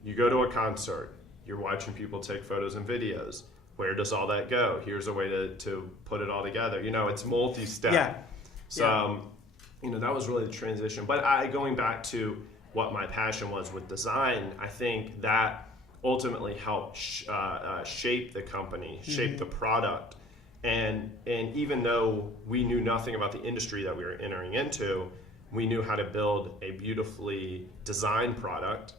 you go to a concert, you're watching people take photos and videos. Where does all that go? Here's a way to put it all together. It's multi-step. Yeah. So, that was really the transition. But going back to what my passion was with design, I think that ultimately helped shape the company, shape the product. And even though we knew nothing about the industry that we were entering into, we knew how to build a beautifully designed product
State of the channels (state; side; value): normal; both; correlation 0.51